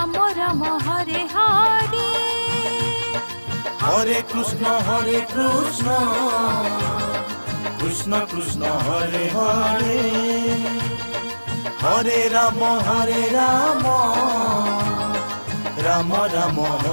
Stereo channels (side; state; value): both; inverted; correlation -1.00